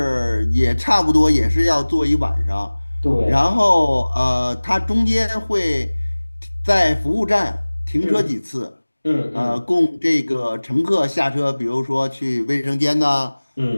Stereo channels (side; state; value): both; inverted; correlation -1.00